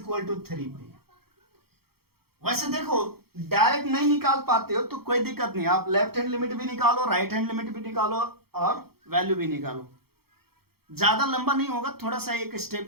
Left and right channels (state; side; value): late; left; 0.95 ms